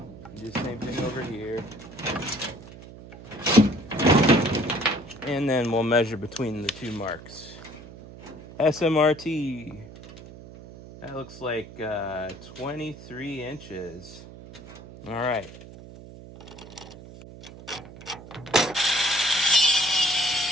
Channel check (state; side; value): noise; right; hum, 16 dB below the sound